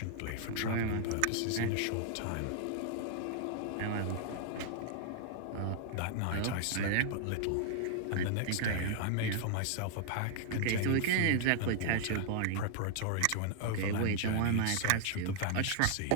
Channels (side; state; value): both; different; correlation -0.01